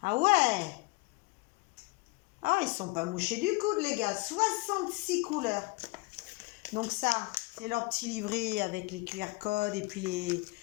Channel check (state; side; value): quieter; right; 23.9 dB